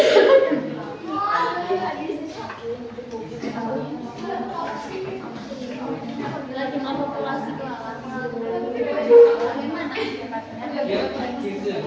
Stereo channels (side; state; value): both; identical; correlation 1.00